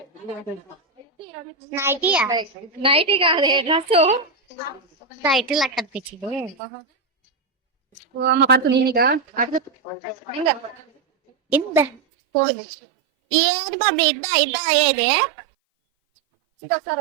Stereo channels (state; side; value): drops out; left; at 12.0 s